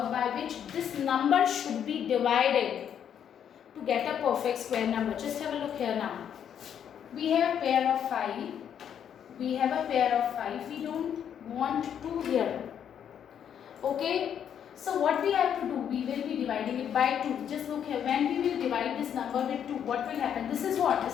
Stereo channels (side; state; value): right; quieter; 8.8 dB